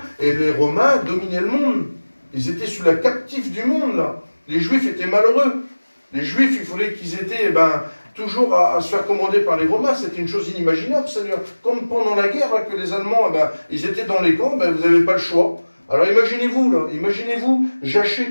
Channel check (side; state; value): both; inverted; correlation -1.00